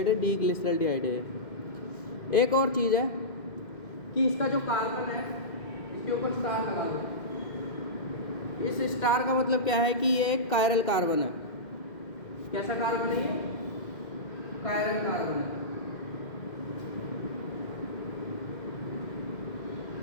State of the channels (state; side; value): late; right; 2.1 ms